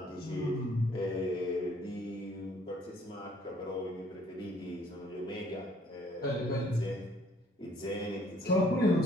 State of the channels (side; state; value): both; normal; correlation 0.61